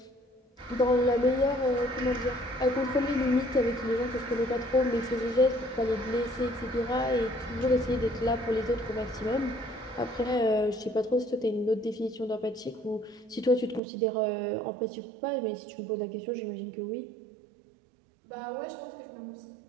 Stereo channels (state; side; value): drops out; left; at 13.8 s